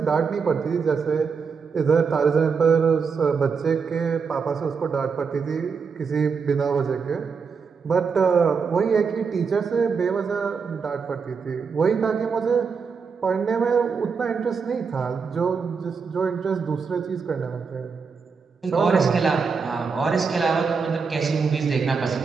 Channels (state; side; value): quieter; left; 5.5 dB